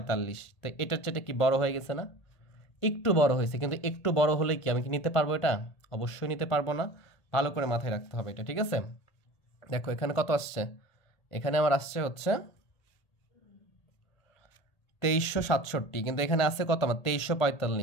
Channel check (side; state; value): right; late; 1.8 ms